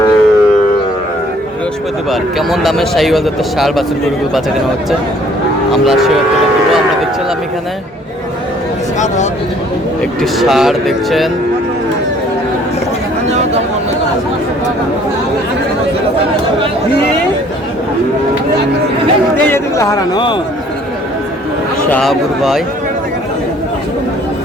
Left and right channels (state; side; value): normal; both; correlation 0.58